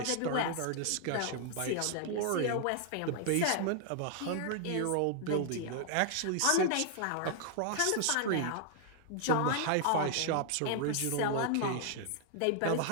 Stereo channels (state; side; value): different; both; correlation 0.00